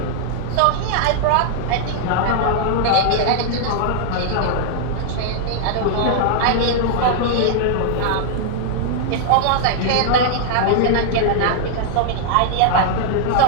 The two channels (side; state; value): both; different; correlation -0.01